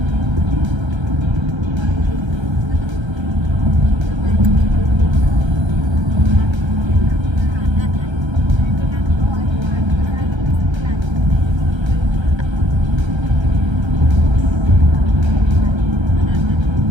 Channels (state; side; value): late; left; 1.3 ms